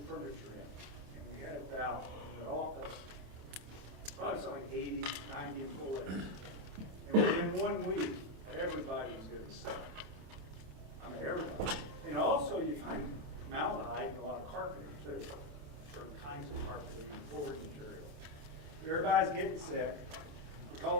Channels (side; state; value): left; late; 28 ms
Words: furniture in. And we had about, in the office, probably something like 80, 90 employees. And within 1 week, everybody was getting sick. I mean, everybody. And also, you find formaldehyde in a lot of carpeting, too. Certain kinds of carpeting and flooring material. Everybody's getting sick. We